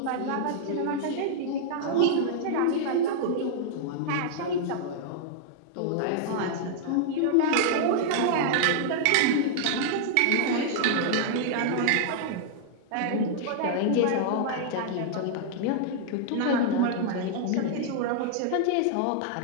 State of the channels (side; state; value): both; different; correlation -0.01